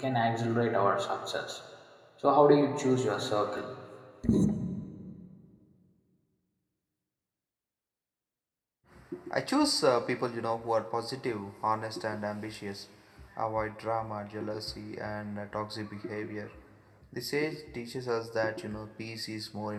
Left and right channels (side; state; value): both; identical; correlation 1.00